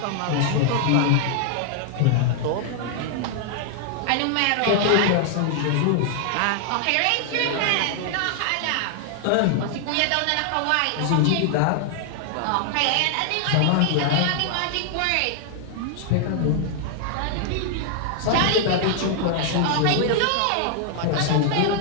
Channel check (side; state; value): both; different; correlation 0.00